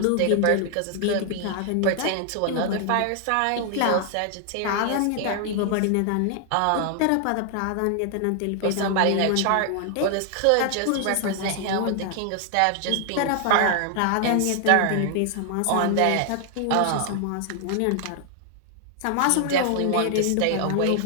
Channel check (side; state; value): both; different; correlation 0.00